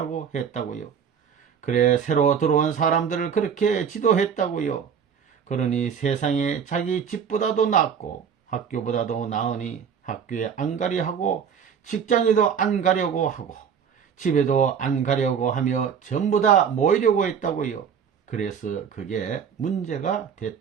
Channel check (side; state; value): left; quieter; 7.3 dB